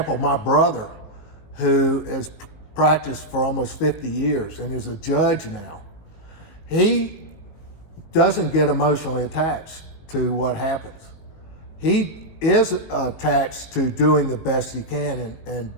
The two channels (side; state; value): right; late; 19 ms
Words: my brother, who has practiced for almost 50 years and is a judge now, he doesn't get emotionally attached to what happens. He is attached to doing the best he can